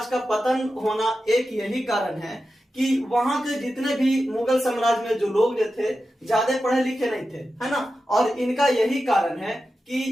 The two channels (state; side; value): normal; both; correlation 0.91